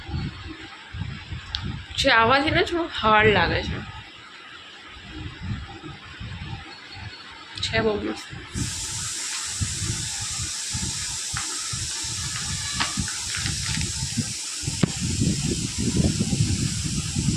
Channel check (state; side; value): identical; both; correlation 1.00